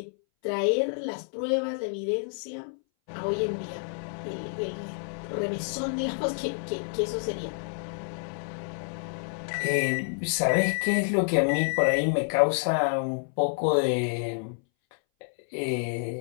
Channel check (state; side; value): silent; right; 59 dB below the other